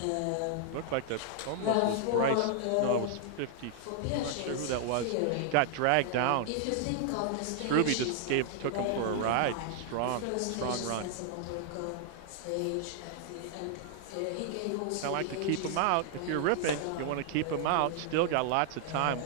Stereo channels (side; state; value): both; different; correlation 0.00